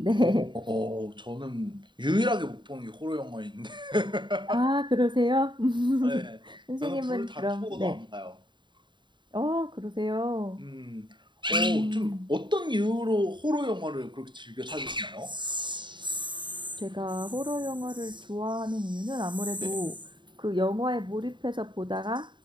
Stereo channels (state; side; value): late; left; 0.23 ms